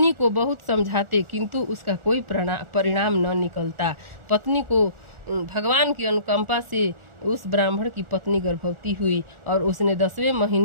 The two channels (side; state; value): left; late; 1.4 ms